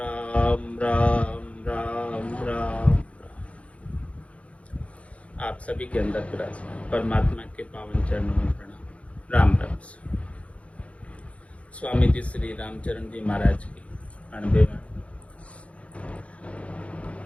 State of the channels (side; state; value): right; late; 0.063 ms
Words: राम राम राम। आप सभी के अंदर विराजमान परमात्मा के पावन चरणों में प्रणाम। राम राम। स्वामी जी श्री रामचरण जी महाराज की 98वां